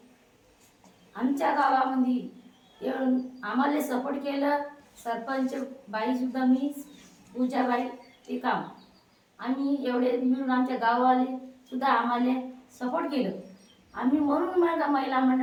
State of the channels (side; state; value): both; identical; correlation 1.00